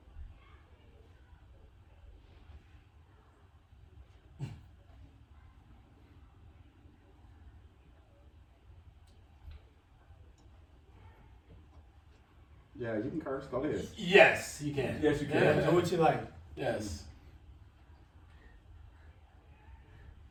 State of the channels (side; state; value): both; identical; correlation 1.00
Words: Yeah, you can curse. Go ahead. Yes, you can. Yes, you can. Yeah. Do what you like. Yes.